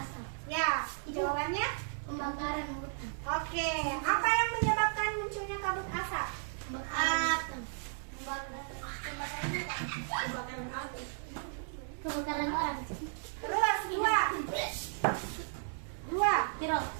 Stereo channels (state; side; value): silent; left; digital silence